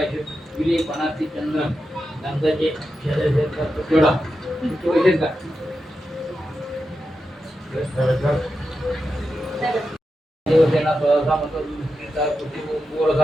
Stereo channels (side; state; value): both; normal; correlation 0.89